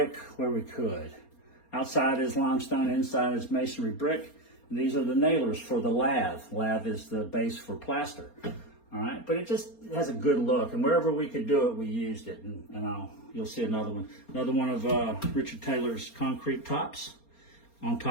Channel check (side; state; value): right; late; 4.3 ms